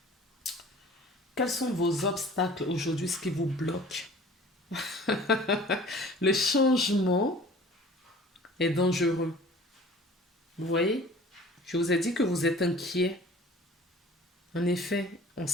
Quels sont vos obstacles aujourd'hui, ce qui vous bloque? Le changement est dangereux. Vous voyez? Je vous ai dit que vous êtes inquiet. En effet, on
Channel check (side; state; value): both; normal; correlation 0.47